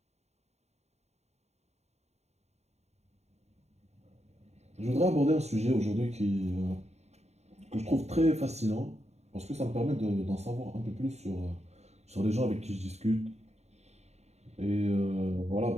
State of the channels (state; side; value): late; left; 0.32 ms